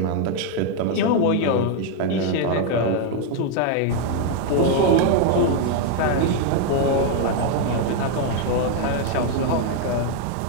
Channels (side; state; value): both; different; correlation 0.00